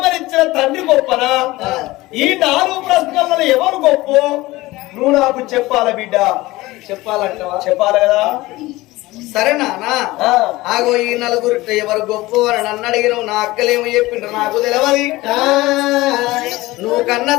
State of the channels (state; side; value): quieter; right; 19.4 dB